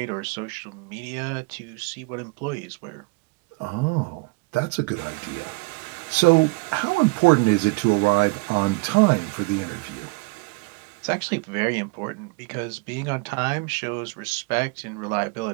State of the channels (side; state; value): left; quieter; 26.9 dB